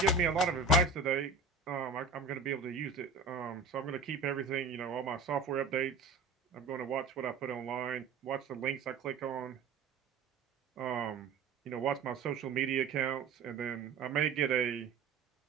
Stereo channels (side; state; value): left; quieter; 4.3 dB